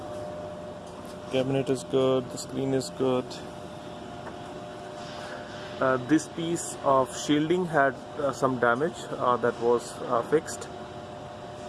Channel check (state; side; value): identical; both; correlation 1.00